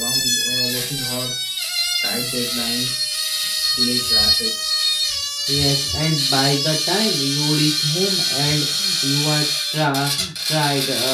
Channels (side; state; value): both; identical; correlation 1.00